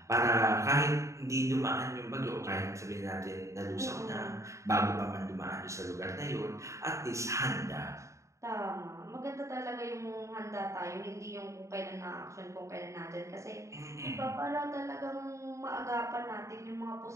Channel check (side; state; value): left; late; 0.14 ms